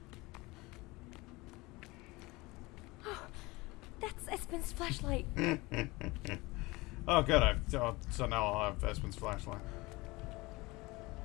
That's Espen's flashlight. Oh, good. So now I'll have Espen's flashlight.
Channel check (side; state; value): right; quieter; 22.6 dB